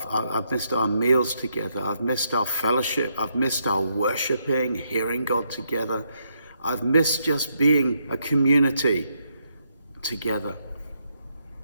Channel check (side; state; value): both; inverted; correlation -0.78